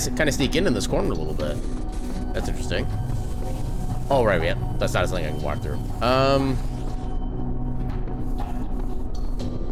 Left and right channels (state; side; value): identical; both; correlation 1.00